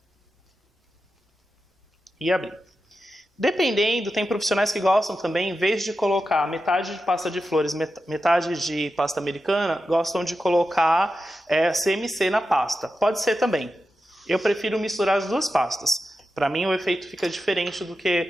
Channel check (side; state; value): both; normal; correlation 0.91